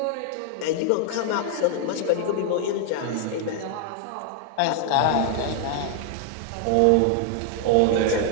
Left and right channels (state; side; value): different; both; correlation 0.00